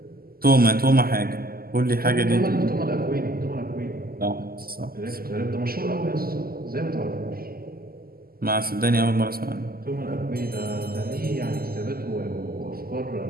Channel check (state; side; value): late; left; 0.43 ms